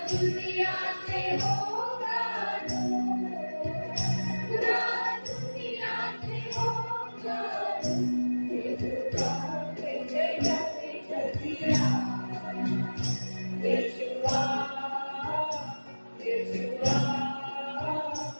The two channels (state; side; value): inverted; both; correlation -1.00